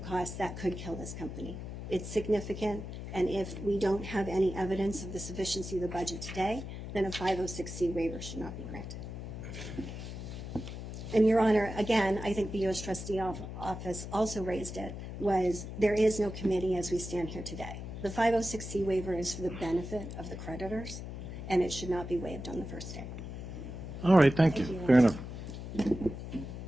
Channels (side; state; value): left; noise; hum, 8 dB below the sound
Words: cost that could kill this company. It's significant, and if we don't have any evidence of the sufficiency of the budget today, then a 506C waiver should not be granted. And Your Honor, again, I think the U.S. Trustee Office also raised it, was there is no committee as we stand here today. The 506C waiver is for the benefit of the creditors, and it should not be waived on the first day. All right, thank you. Fair enough.